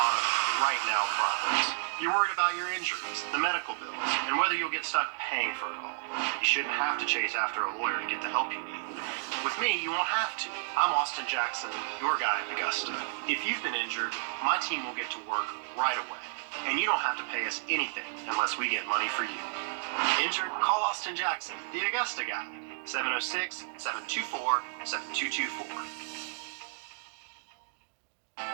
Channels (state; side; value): silent; left; digital silence